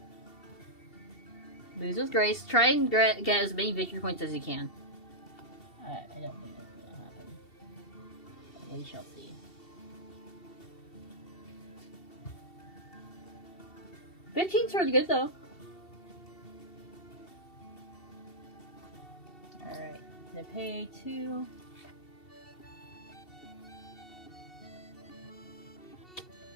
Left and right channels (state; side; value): late; right; 2.7 ms